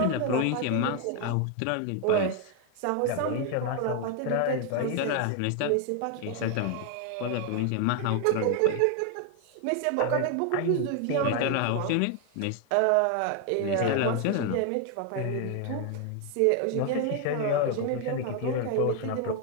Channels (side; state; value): both; different; correlation 0.01